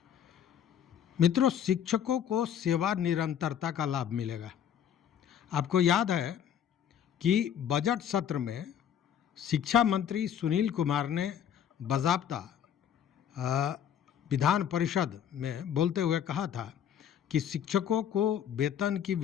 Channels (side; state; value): right; quieter; 9.2 dB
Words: मित्रों, शिक्षकों को सेवा निरंतरता का लाभ मिलेगा। आपको याद है कि बजट सत्र में शिक्षा मंत्री सुनील कुमार ने बाज़ाब्ता विधान परिषद में बोलते हुए कहा था कि शिक्षकों को वेतन की